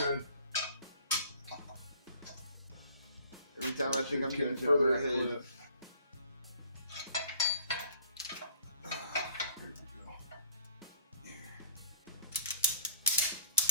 Every time I think I'm getting Catch further on that ahead. clip. Here we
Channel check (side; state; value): both; inverted; correlation -0.52